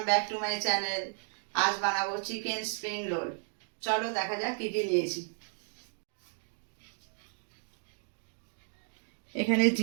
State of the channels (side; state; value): left; silent; digital silence